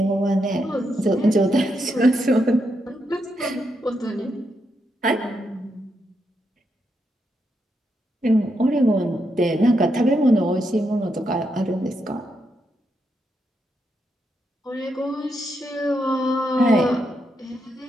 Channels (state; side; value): normal; both; correlation 0.82